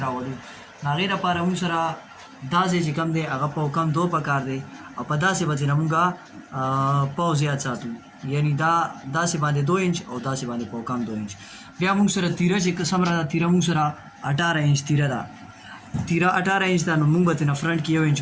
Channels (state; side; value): identical; both; correlation 1.00